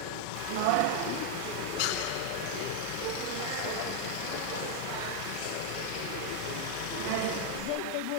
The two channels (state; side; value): different; both; correlation 0.00